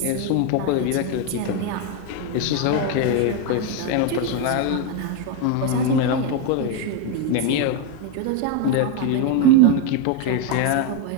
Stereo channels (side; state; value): both; different; correlation 0.02